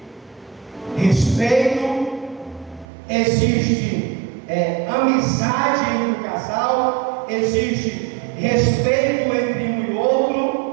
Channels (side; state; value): left; drops out; at 2.9 s